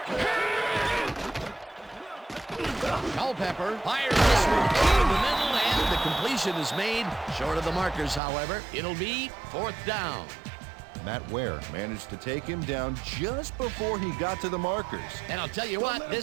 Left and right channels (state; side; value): drops out; left; at 8.2 s